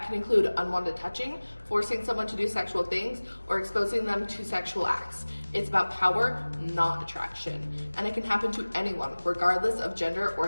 can include unwanted touching, forcing someone to do sexual things, or exposing them to sexual acts. It's about power, not attraction, and it can happen to anyone, regardless of gender or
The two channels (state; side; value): inverted; both; correlation -1.00